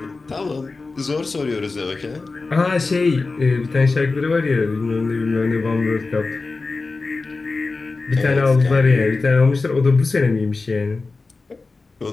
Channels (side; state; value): right; quieter; 3.8 dB